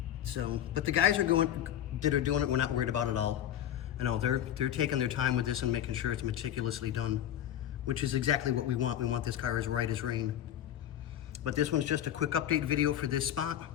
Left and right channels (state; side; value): quieter; right; 11.0 dB